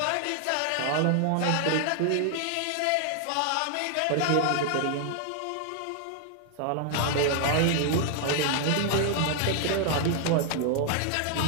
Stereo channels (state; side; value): different; both; correlation 0.00